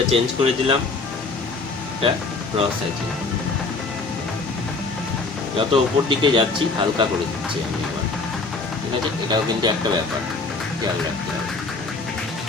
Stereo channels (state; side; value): quieter; right; 3.8 dB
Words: চেঞ্জ করে দিলাম, এটা ক্রস হ্যাচিং। যত উপর দিকে যাচ্ছি হালকা করে দিচ্ছি আমি আবার, ঠিক আছে। এটাও কিন্তু একটা ব্যাপার, খেয়াল রাখতে হবে।